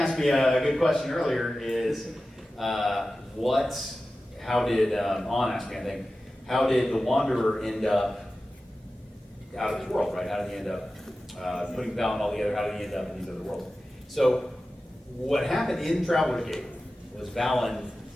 me a good question earlier is, how did, On asked me, I think, how did the Wanderer end up out of this world, right? How did he end up putting Valen all together? How did he end up in these other worlds? So what happened in Traveler's Gate was Valen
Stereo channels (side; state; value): both; normal; correlation 0.94